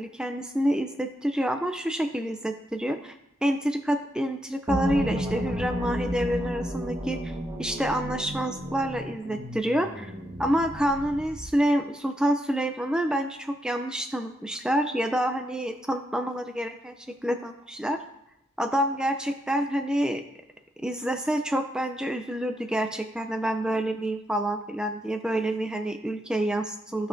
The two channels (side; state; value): both; normal; correlation 0.81